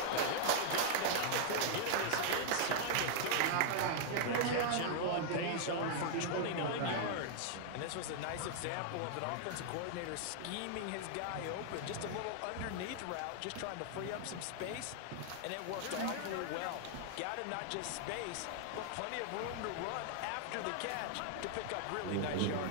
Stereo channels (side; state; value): both; different; correlation 0.00